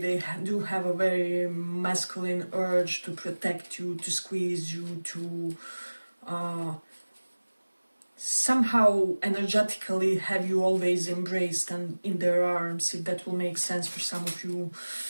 do have a very masculine urge to protect you, to squeeze you, to somehow energetically have you always embraced and in their arms, if that will make sense for some of you.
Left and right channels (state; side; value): inverted; both; correlation -1.00